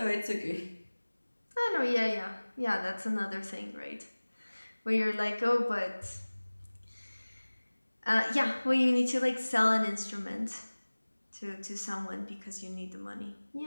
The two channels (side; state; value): both; inverted; correlation -1.00